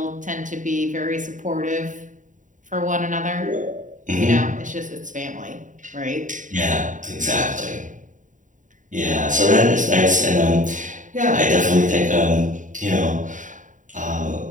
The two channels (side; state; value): left; late; 0.37 ms